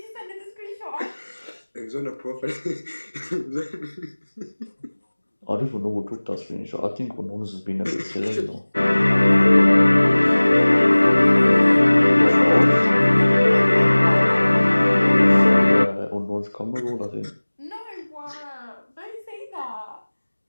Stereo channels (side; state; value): both; inverted; correlation -1.00